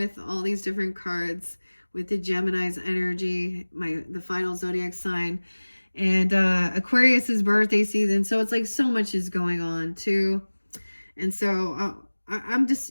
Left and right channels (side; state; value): both; inverted; correlation -1.00